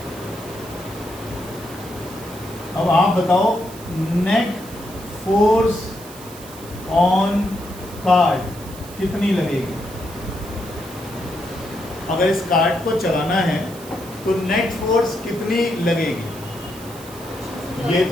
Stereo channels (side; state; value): right; noise; hiss, 17 dB below the sound